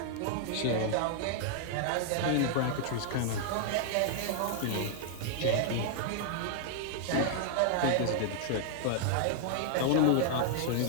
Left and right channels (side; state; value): both; different; correlation -0.01